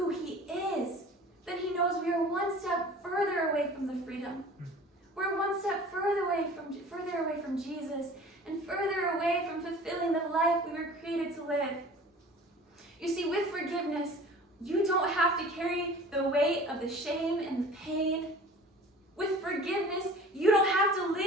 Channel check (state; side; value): normal; both; correlation 0.44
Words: he is, then he knows we are one step further away from the freedom. We're one step further away from Jesus, and further away from fulfilling the life we were created to live. You see, with forgiveness, you don't have to carry the weight of the shame and the pain. With forgiveness, you don't have to